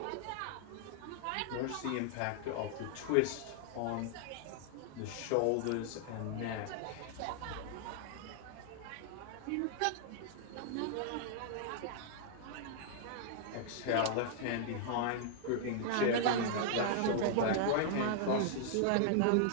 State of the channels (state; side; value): different; both; correlation -0.01